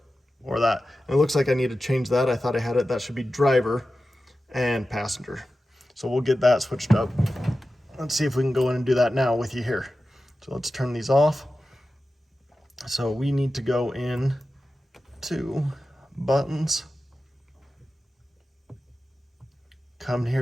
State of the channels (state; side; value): normal; both; correlation 0.93